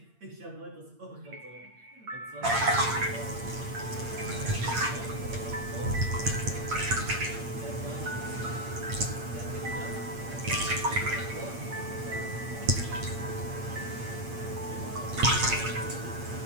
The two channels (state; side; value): late; left; 8.7 ms